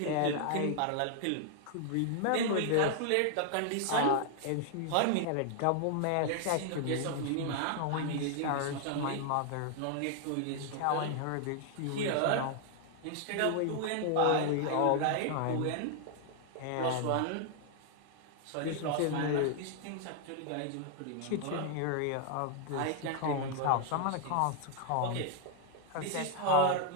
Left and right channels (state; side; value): different; both; correlation 0.00